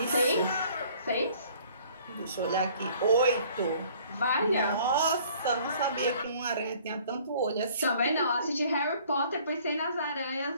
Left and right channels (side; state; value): both; inverted; correlation -0.55